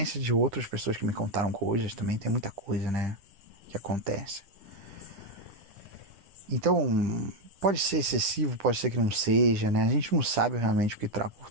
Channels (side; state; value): left; late; 10 ms